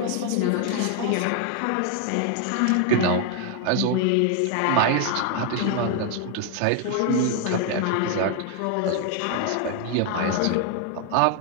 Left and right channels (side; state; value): both; different; correlation 0.00